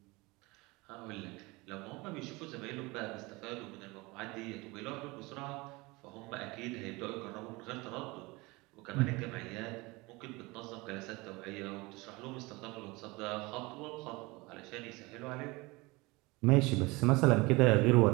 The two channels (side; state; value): left; quieter; 23.8 dB